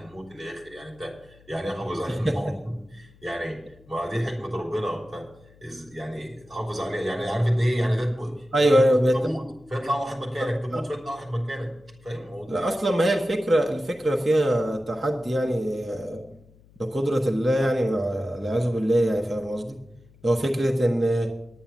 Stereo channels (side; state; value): left; noise; hum, 27 dB below the sound